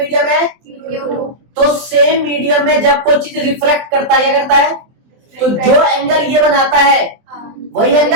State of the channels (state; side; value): late; left; 24 ms